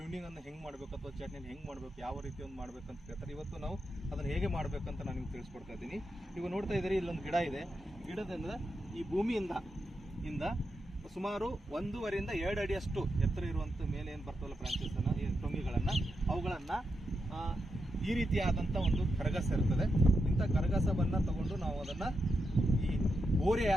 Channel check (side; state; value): both; normal; correlation 0.86